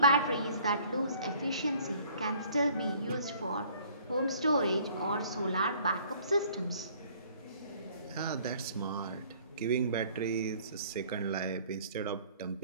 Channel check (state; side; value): inverted; both; correlation -0.56